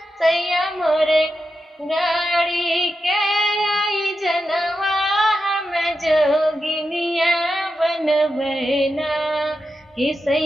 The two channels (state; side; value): normal; both; correlation 0.89